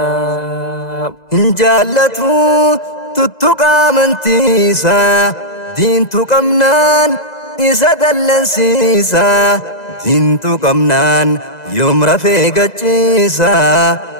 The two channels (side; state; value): right; late; 2.0 ms